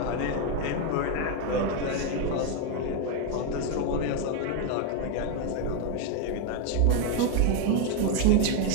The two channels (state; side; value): different; both; correlation 0.01